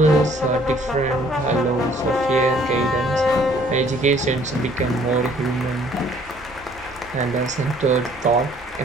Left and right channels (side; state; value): both; normal; correlation 0.59